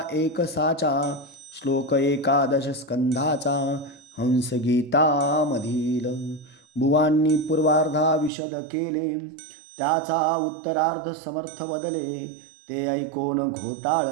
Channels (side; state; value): left; drops out; at 8.3 s